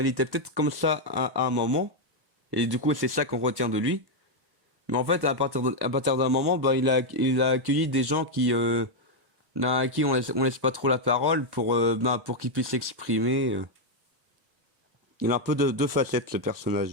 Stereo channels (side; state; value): left; late; 1.1 ms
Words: était peut-être comme ça à un moment, et du coup c'est ça qu'on retient de lui. Mais en fait à partir d'un moment ben, il a accueilli des gens à qui on laisse pas trop la parole pour qu'ils puissent s'exprimer. Il a un peu de deux facettes ce